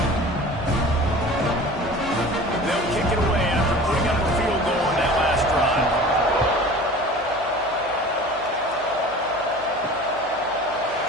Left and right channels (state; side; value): noise; right; hum, 23 dB below the sound